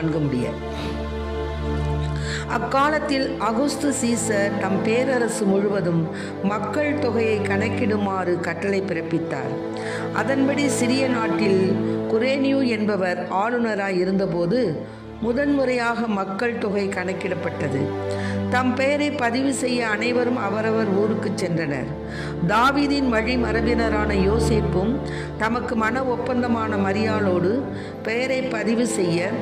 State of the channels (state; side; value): identical; both; correlation 1.00